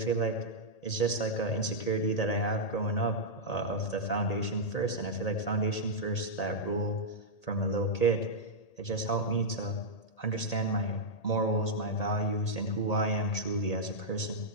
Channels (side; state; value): right; late; 1.8 ms